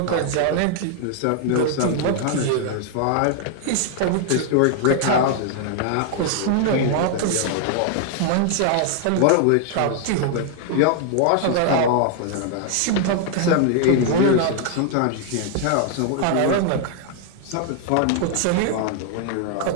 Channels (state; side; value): different; both; correlation 0.00